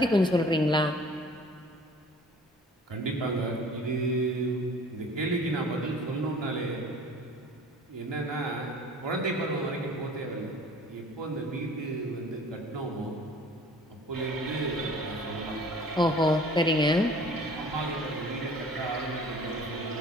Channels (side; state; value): both; normal; correlation 0.48